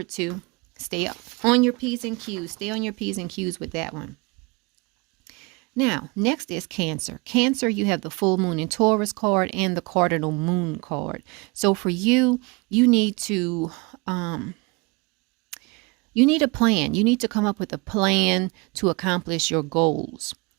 to. Stay on your P's and Q's. Stay on your P's and Q's with that one. Now, next is Cancer. Cancer, you have the full moon in Taurus card and the cardinal moon card. So for you, you need to you need a plan. You need to come up with a plan to accomplish your goals.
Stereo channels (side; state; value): left; quieter; 27.9 dB